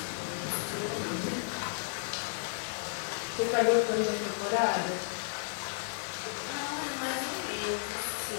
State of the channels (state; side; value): silent; right; digital silence